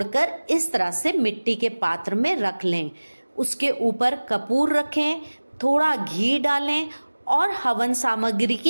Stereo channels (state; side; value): inverted; both; correlation -1.00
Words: इस तरह से मिट्टी के पात्र में रख लें। उसके ऊपर कपूर रखें, थोड़ा घी डालें और हवन सामग्री